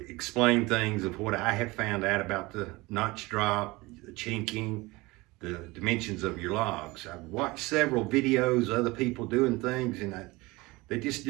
explain things of what I have found out about the notch drop, the chinking, the dimensions of your logs. I've watched several videos, other people doing things, and they just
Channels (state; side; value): quieter; left; 22.2 dB